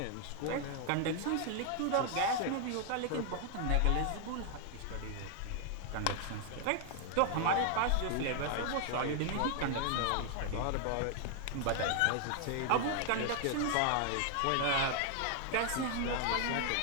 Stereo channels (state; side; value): different; both; correlation 0.00